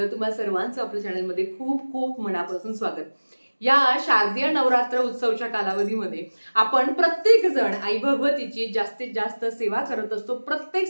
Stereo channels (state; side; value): inverted; both; correlation -1.00